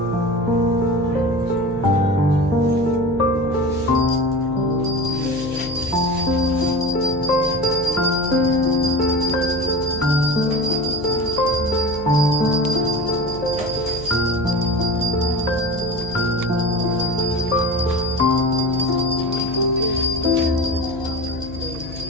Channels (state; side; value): noise; left; hum, 14 dB below the sound